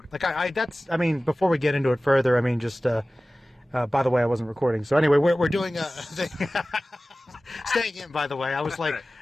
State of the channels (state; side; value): normal; both; correlation 0.97